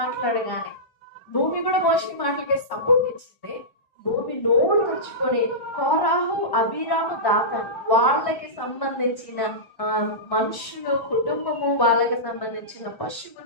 మాట్లాడగానే, భూమి కూడా మోషే మాటలకి సపోర్ట్ ఇచ్చింది. భూమి నోరు తెచ్చుకొని కోరాహు, అబీరాము, దాతాను వాళ్ళకి సంబంధించిన మనుషులు, కుటుంబము, వాళ్ళకి సంబంధించిన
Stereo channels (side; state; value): right; late; 1.1 ms